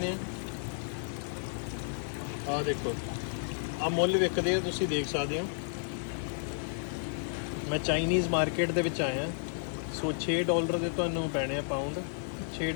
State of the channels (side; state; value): right; silent; 56 dB below the other